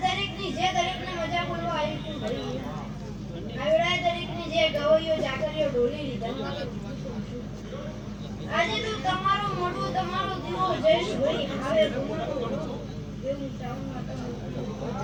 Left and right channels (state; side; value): identical; both; correlation 1.00